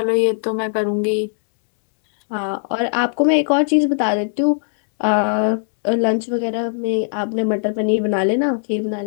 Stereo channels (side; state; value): right; silent; 67 dB below the other